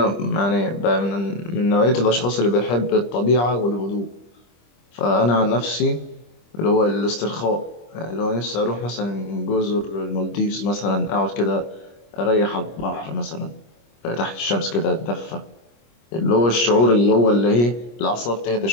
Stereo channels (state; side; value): late; right; 25 ms